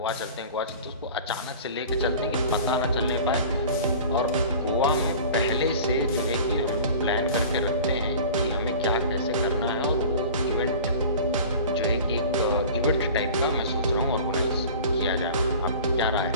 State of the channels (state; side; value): inverted; both; correlation -0.40